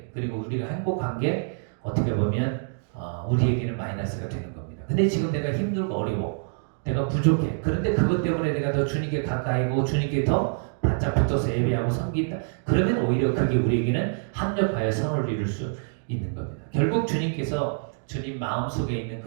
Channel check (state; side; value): silent; left; digital silence